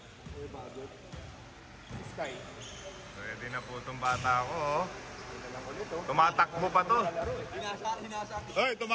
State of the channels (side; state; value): both; identical; correlation 1.00